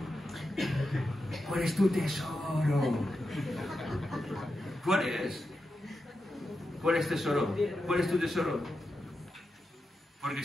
¿Cuál es tu tesoro? ¿Cuál es? ¿Cuál es tesoro? ¿Cuál es tu tesoro? Porque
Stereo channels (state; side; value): normal; both; correlation 0.88